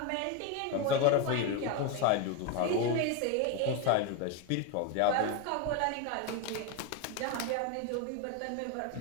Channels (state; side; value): different; both; correlation 0.02